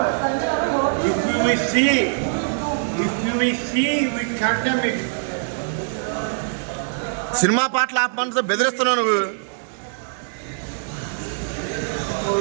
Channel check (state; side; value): silent; left; digital silence